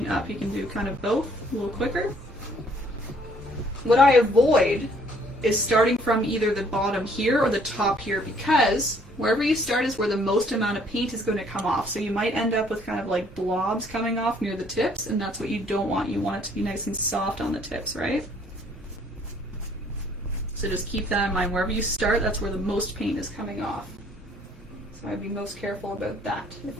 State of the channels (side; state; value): both; normal; correlation 0.62